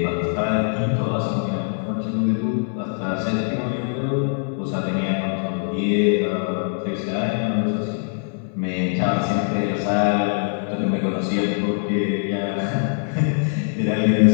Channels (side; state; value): right; silent; digital silence